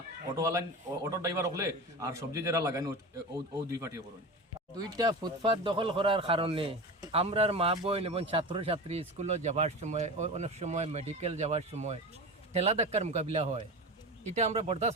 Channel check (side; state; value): both; normal; correlation 0.28